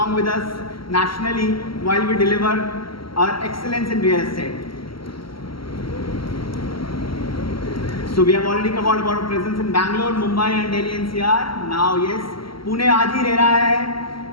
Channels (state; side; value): late; right; 0.74 ms